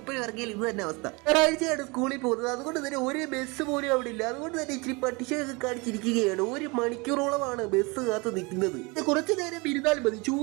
ഇറങ്ങിയാൽ ഇത് തന്നെ അവസ്ഥ. ഒരാഴ്ചയാണ് സ്കൂളിൽ പോകുന്നത്, അതുകൊണ്ട് തന്നെ ഒരു ബസ് പോലും അവിടെ ഇല്ല. അതുകൊണ്ട് തന്നെ ഇച്ചിരി പട്ടിഷയൊക്കെ കാണിച്ചിരിക്കുകയാണ്. 1 മണിക്കൂറോളമാണ് ബസ് കാത്ത് നിൽക്കുന്നത്. കുറച്ചു നേരം ഇരുന്നാൽ മതി,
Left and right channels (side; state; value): left; quieter; 27.2 dB